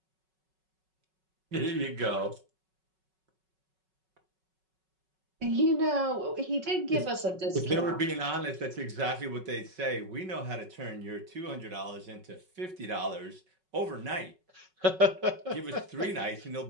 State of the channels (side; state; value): left; late; 5.4 ms